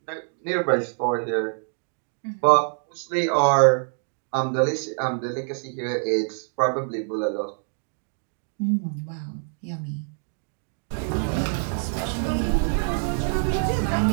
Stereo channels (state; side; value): silent; left; 59 dB below the other